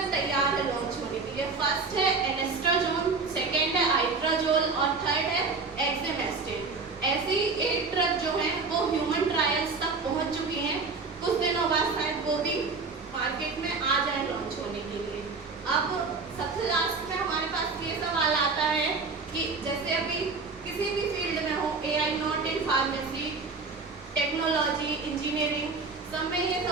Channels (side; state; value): left; quieter; 4.3 dB